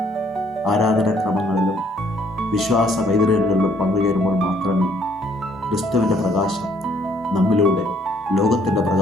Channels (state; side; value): normal; both; correlation 0.64